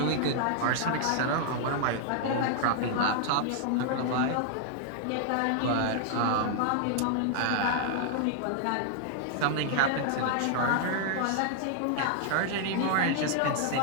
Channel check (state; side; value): different; both; correlation 0.00